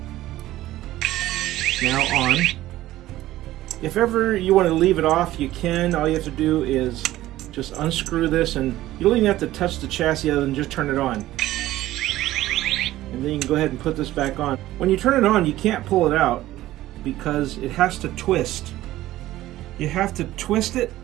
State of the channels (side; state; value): left; quieter; 15.4 dB